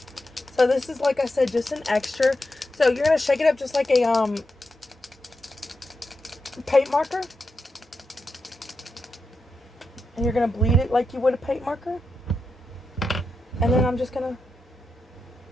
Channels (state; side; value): normal; both; correlation 0.88